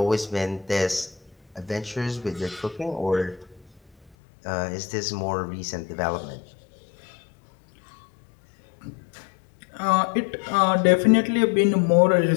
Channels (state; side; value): drops out; right; at 4.1 s